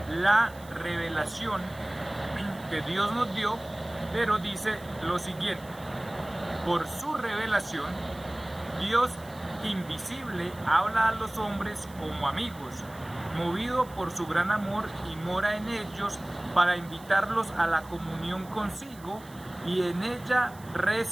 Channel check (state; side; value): noise; right; hiss, 22 dB below the sound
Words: la revelación que Dios nos dio, pero dice lo siguiente: por su revelación, Dios invisible habla a los hombres como amigos, movido por su gran amor y mora en ellos para invitarlos a la comunión consigo y en ella